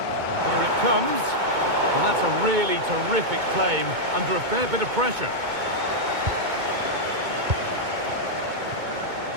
And here it comes. Well, that's a really terrific claim under a fair bit of pressure.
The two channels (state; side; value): late; left; 2.2 ms